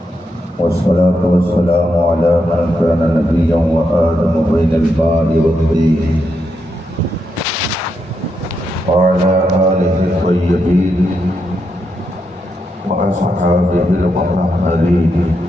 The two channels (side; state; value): both; normal; correlation 0.82